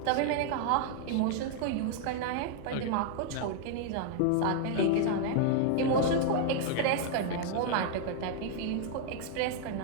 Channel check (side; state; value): both; different; correlation 0.00